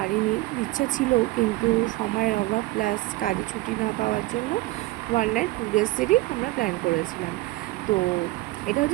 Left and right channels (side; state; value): left; quieter; 19.1 dB